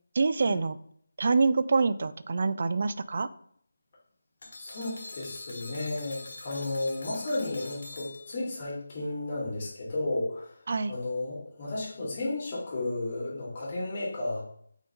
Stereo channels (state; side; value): inverted; both; correlation -0.91